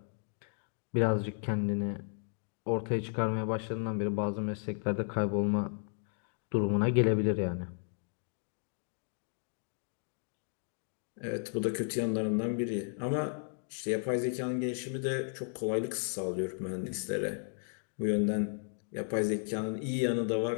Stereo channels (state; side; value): silent; right; 55 dB below the other